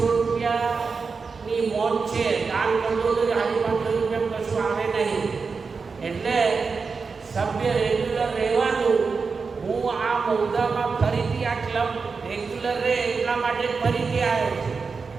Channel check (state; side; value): quieter; left; 4.9 dB